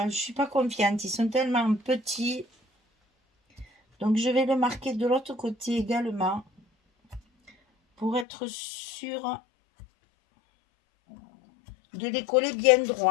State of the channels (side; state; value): right; drops out; at 8.2 s